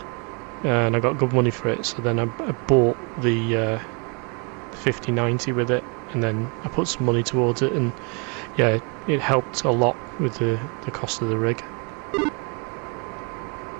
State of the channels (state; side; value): quieter; left; 33.8 dB